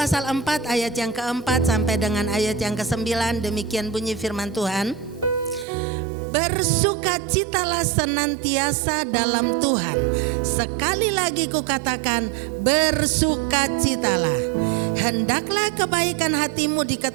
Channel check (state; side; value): drops out; left; at 5.7 s